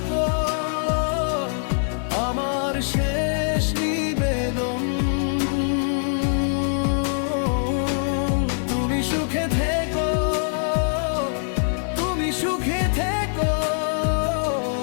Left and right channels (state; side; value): silent; right; digital silence